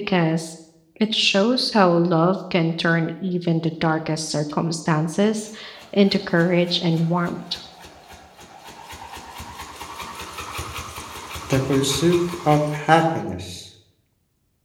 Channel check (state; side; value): identical; both; correlation 1.00